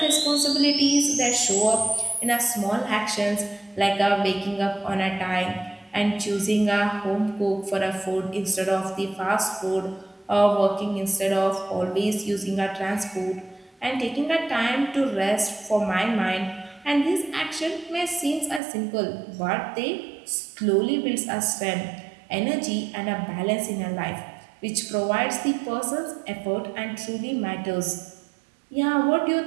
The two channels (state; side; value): drops out; left; at 18.6 s